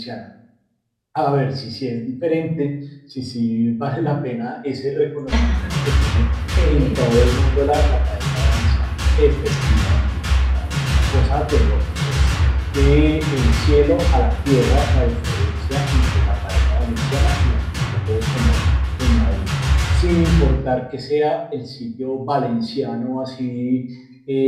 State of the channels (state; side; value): identical; both; correlation 1.00